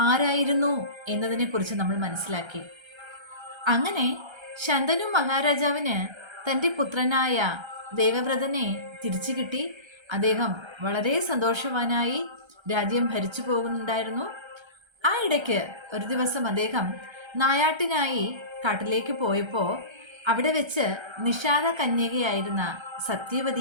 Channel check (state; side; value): late; left; 1.3 ms